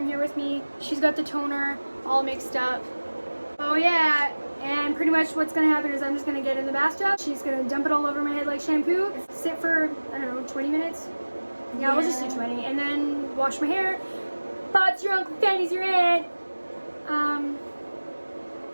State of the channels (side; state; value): both; inverted; correlation -1.00